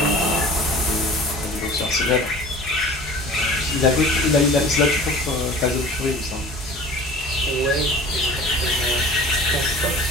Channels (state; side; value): normal; both; correlation 0.43